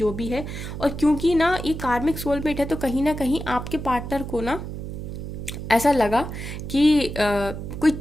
भी है। और क्योंकि ना ये कार्मिक सोलमेट है, तो कहीं ना कहीं आपके पार्टनर को ना ऐसा लगा कि कोई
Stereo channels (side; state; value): right; noise; hum, 7 dB below the sound